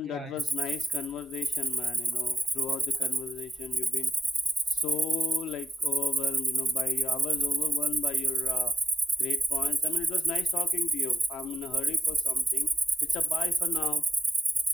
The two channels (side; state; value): both; normal; correlation 0.78